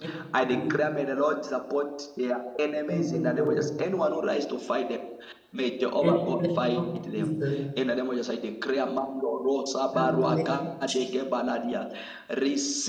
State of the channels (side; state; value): both; identical; correlation 1.00